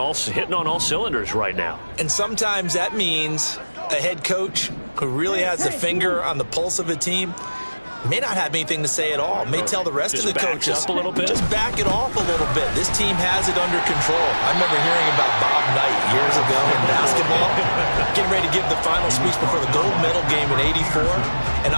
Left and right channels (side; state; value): both; inverted; correlation -1.00